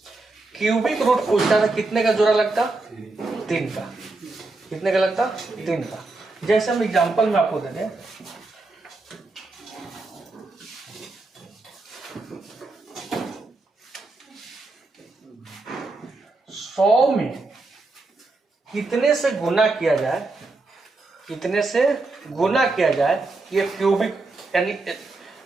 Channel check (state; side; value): quieter; left; 3.3 dB